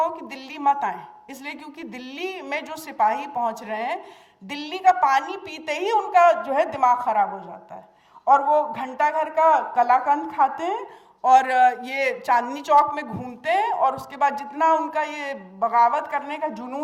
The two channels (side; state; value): both; identical; correlation 1.00